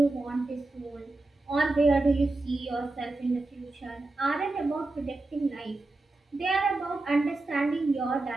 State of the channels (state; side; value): quieter; left; 3.0 dB